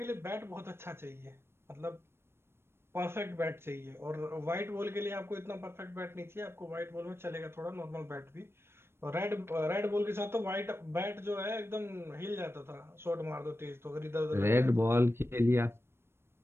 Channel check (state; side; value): late; left; 0.12 ms